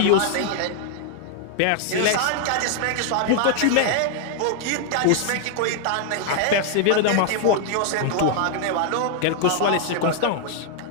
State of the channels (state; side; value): different; both; correlation 0.00